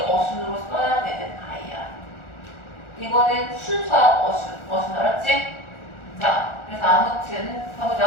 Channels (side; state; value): right; late; 1.4 ms